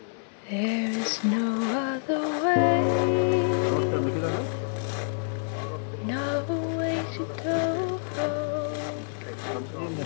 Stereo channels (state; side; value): silent; right; 60 dB below the other